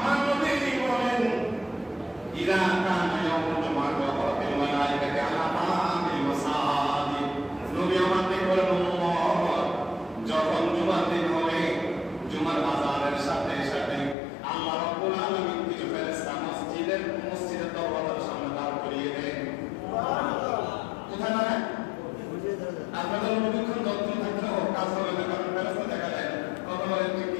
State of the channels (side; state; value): right; drops out; at 14.2 s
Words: নবী বলেন, ইযা কানা ইয়াউমুল জুমআহ ওয়া রাফিল মালায়েকাতি আলা বাবিল মাসাজিদ, নবী আমাদের বলেন, যখন জুমার দিন হবে, জুমার আযানের সাথে সাথে আল্লাহ রাব্বুল আলামিন কিছু ফেরেশতা মসজিদের দরজার সামনে দাঁড় করিয়ে দেন। সুবহানাল্লাহ। কোথায় দাঁড়ায়? আপনাদের অনুক্ষণ যত্ন থাকলেও কাজ হবে না, কারণ ফেরেশতা দেখা যায়। কথা বলেন ঠিক